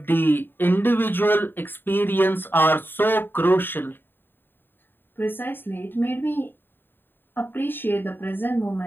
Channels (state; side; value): late; right; 0.097 ms